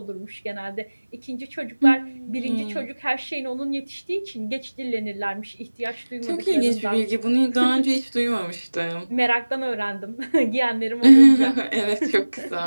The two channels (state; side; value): inverted; both; correlation -1.00